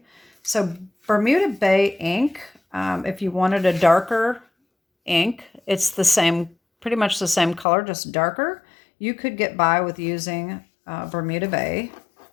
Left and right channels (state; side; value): drops out; right; at 7.7 s